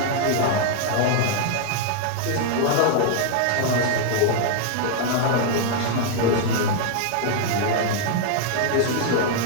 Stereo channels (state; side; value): different; both; correlation 0.00